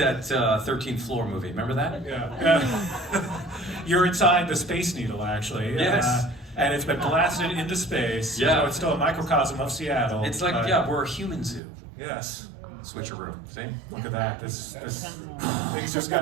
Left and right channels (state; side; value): drops out; left; at 11.6 s